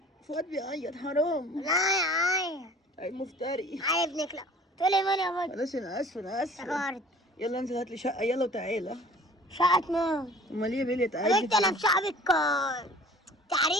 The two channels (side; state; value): both; normal; correlation 0.48